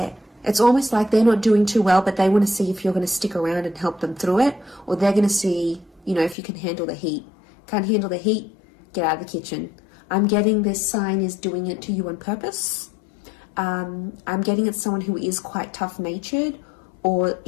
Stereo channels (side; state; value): right; drops out; at 6.4 s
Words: almost like they're not doing too well, but they want to see if you're going to stick around and help them through it. Or they're going to see, you know, if you can handle the heat. Can't handle the heat? Get out of the kitchen. I'm getting this sign is doing it to you on purpose. I'm getting it's someone who is quite tough-natured, or,